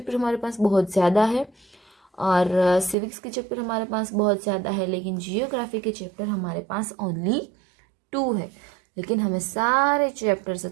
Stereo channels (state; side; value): drops out; left; at 3.0 s